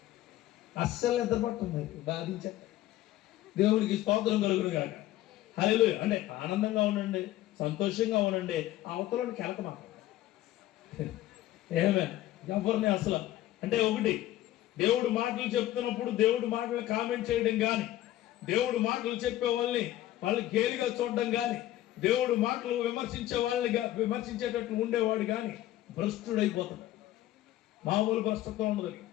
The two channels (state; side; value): quieter; right; 14.5 dB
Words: అస్సలు నిద్ర పడుతుంది, బాధించ. దేవుడికి స్తోత్రం కలుగును కాక. హల్లెలూయా! అంటే ఆనందంగా ఉండండి, సంతోషంగా ఉండండి. అవతలని కెలక మాట్లాడండి. ఏమే ఎవరిని అసలు అంటే ఒకటి, దేవుడు మాటలు చెప్తున్నప్పుడు దేవుడు మాటలు కామెంట్ చేయడం కానీ, దేవుడు మాటలు చెప్పే వాళ్ళని గేలిగా చూడడం కానీ, దేవుడు మాటలు విమర్శించేటట్లు ఉండేవాడు కానీ భ్రష్టుడైపోతాడు. మామూలు భ్రష్టత్వం ఉండదు.